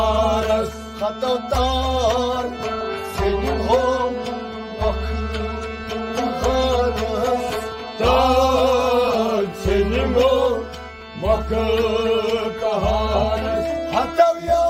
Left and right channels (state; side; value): identical; both; correlation 1.00